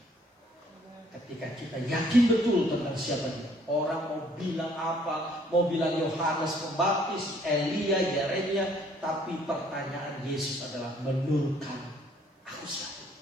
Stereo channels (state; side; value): normal; both; correlation 0.62